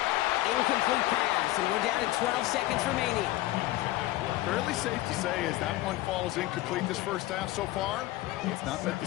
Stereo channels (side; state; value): right; quieter; 16.8 dB